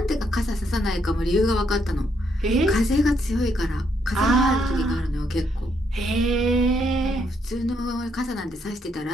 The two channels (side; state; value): both; normal; correlation 0.74